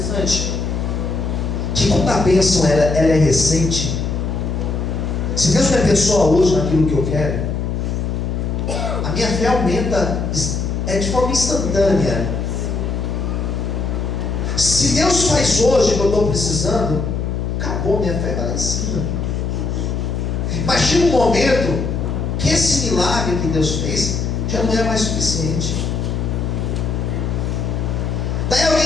Que quando a bênção ela é recente, se Deus me abençoa hoje naquilo que eu quero, a minha fé aumenta de forma instantânea. Se Deus faz hoje o que eu estou precisando, acabou, minha fé vai lá em cima. Mas chega um momento que esse milagre que Deus fez já não é mais suficiente. Daí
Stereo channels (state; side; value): noise; left; hum, 1 dB below the sound